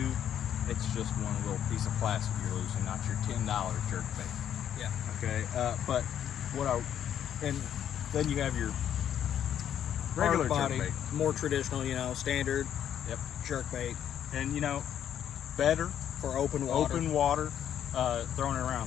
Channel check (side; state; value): right; quieter; 9.8 dB